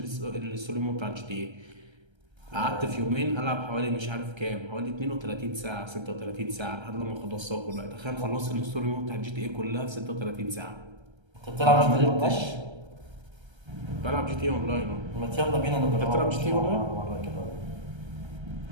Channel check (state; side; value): late; left; 1.3 ms